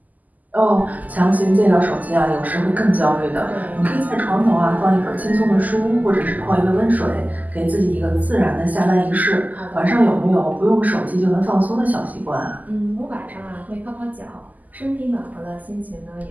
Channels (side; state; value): left; late; 0.080 ms